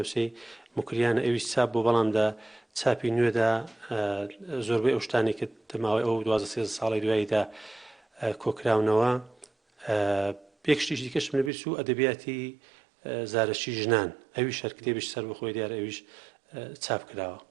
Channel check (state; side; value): drops out; left; at 11.5 s